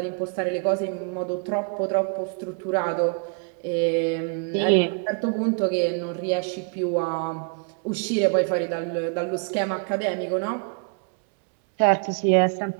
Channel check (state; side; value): quieter; left; 39.7 dB